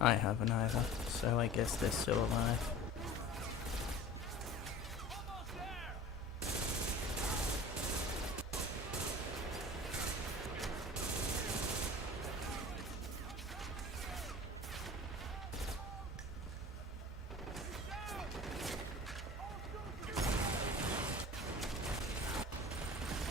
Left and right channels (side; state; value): both; normal; correlation 0.40